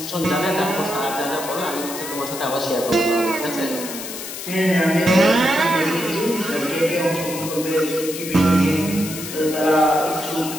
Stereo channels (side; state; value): left; noise; hiss, 9 dB below the sound